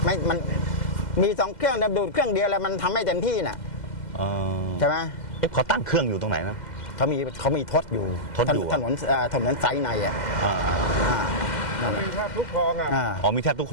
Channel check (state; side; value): late; right; 2.1 ms